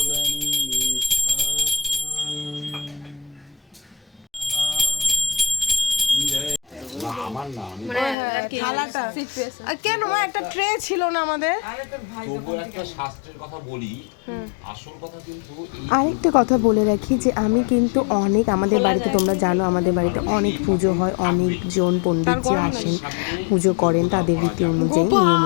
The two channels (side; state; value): right; drops out; at 8.2 s